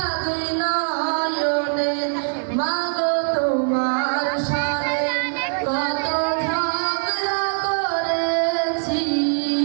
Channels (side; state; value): left; silent; digital silence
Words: দুই নয়নে, মা গো তোমার সনে কত ঝগড়া করেছি,